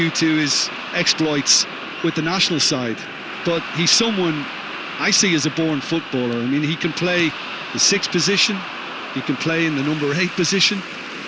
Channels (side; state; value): both; identical; correlation 1.00